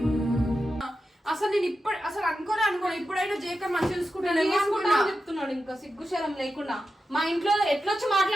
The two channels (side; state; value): both; normal; correlation 0.90